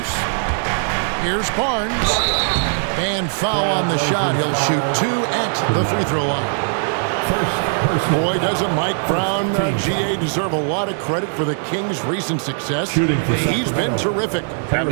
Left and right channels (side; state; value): left; silent; 66 dB below the other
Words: Here's Barnes. And foul on the shot. He'll shoot 2 at the free throw line. Boy, doesn't Mike Brown, GA, deserve a lot of credit for the Kings' recent success. He's been terrific. I